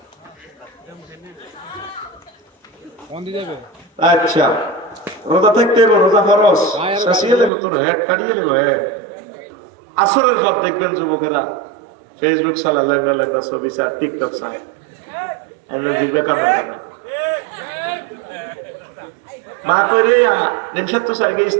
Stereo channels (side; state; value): left; drops out; at 7.5 s